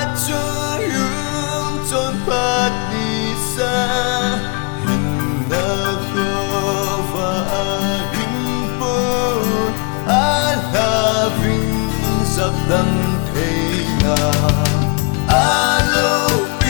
trôi yun trốn phát ni xa hình na khô và a hình bồn a la vinh dập đâm thế nào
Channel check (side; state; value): right; quieter; 31.6 dB